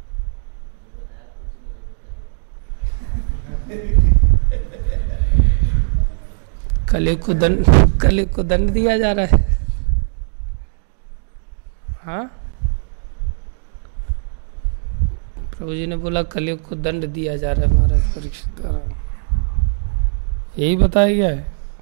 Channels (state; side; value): silent; left; digital silence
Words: कलयुग को दंड दिया जा रहा है। हाँ, प्रभु जी ने बोला कलयुग को दंड दिया जा रहा है महाराज परीक्षित द्वारा, यही बताया गया है।